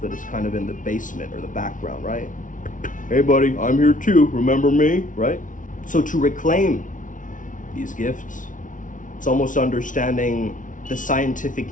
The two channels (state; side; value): late; right; 0.38 ms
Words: that is kind of in the basement or the background, right? Hey buddy, I'm here too, remember me, right? So to reclaim these gifts, it's almost understanding the scientific